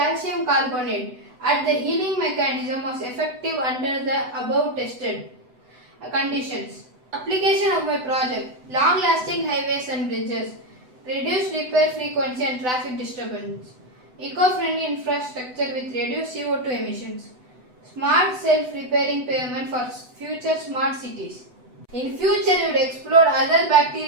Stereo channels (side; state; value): left; late; 8.0 ms